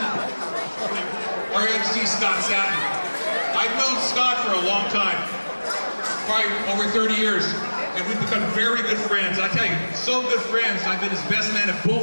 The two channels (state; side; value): inverted; both; correlation -1.00